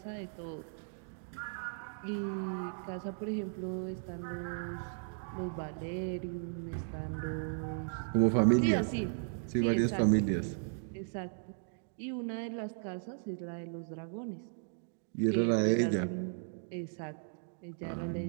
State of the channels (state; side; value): silent; left; digital silence